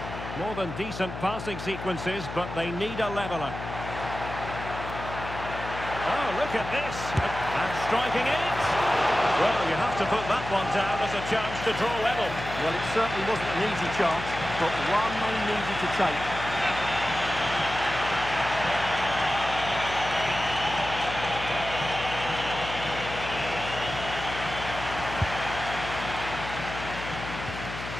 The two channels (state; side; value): noise; left; hum, 9 dB below the sound